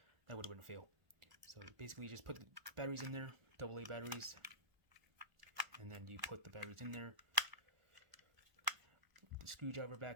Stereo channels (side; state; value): left; late; 1.2 ms